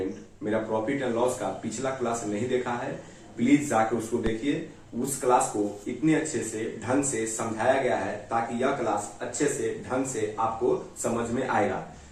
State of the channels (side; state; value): both; identical; correlation 1.00